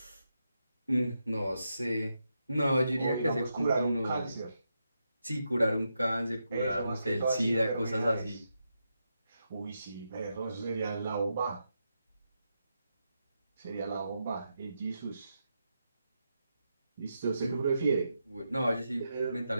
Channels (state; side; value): inverted; both; correlation -0.85